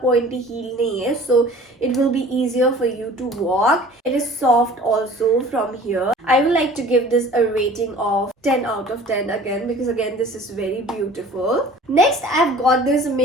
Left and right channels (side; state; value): both; normal; correlation 0.47